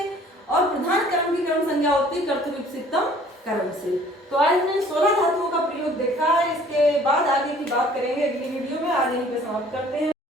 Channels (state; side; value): normal; both; correlation 0.54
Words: और प्रधान कर्म की कर्म संज्ञा होती है कर्तृप्सितम कर्म से। तो आज हमने 16 धातुओं का प्रयोग देखा है, इसके बाद आगे की बात करेंगे अगली वीडियो में। आज यहीं पे समाप्त करते हैं।